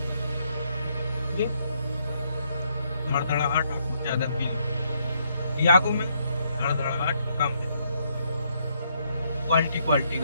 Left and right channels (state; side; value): inverted; both; correlation -0.74